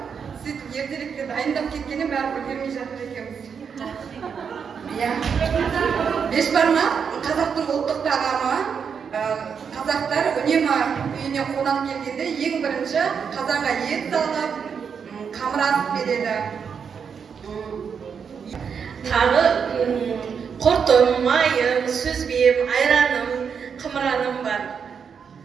Сөйтіп ертеректе дайындап кеткенде бәрі үлгермей жатыр екенбіз. Бешбармақ қазақтың ұлттық тағамы. Қазақтар үнемі үйіне қонақ келгенде ең бірінші қазанға ет салып, қамыр асып береді. Тағы құртым, майым, сүзбем, айраным, қымыраным бар.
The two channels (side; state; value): left; quieter; 6.7 dB